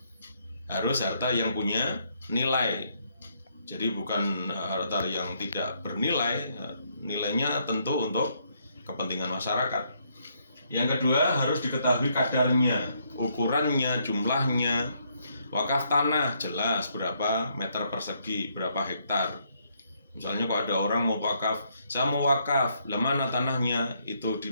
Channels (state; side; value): inverted; both; correlation -0.72